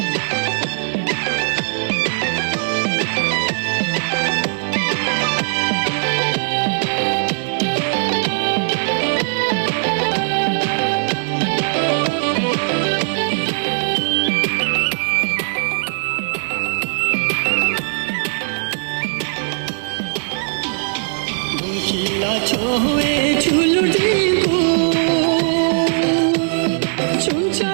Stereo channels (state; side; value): silent; left; digital silence